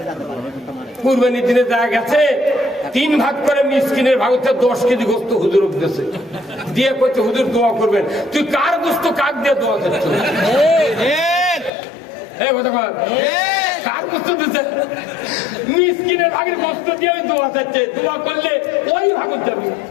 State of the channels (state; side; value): drops out; right; at 11.7 s